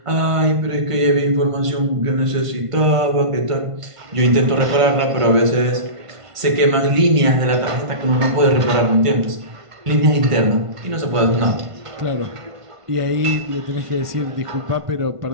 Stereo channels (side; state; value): left; late; 1.5 ms